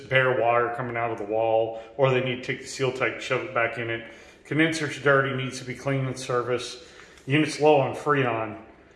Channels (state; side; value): identical; both; correlation 1.00